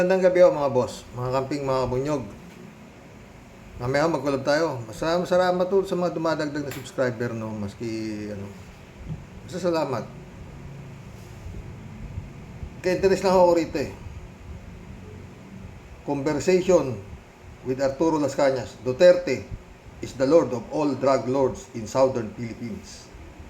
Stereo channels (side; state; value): both; identical; correlation 1.00